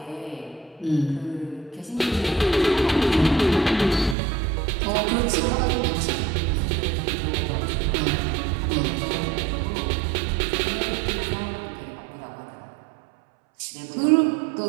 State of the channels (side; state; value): left; drops out; at 4.2 s